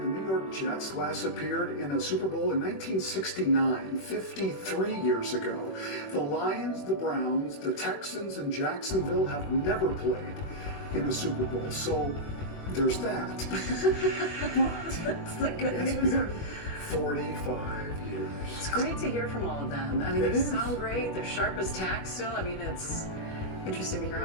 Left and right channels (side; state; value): right; late; 21 ms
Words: New York Jets last appeared in a Super Bowl in 1969, 53 years ago. The Lions, the Browns, the Texans, and Jacksonville have never played in a Super Bowl, so there's that. That's the good It's news. been 45 years. It's great to hear from all of them. I mean, It they is. sound great. They're sharp as tack still. I mean, it's interesting to hear